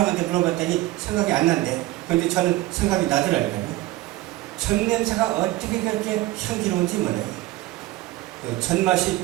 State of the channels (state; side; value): quieter; left; 17.3 dB